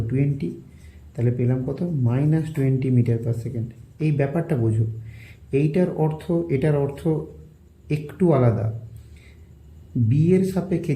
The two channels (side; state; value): both; identical; correlation 1.00